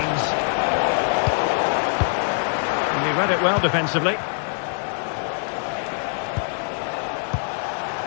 And he read it well defensively.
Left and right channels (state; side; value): silent; right; digital silence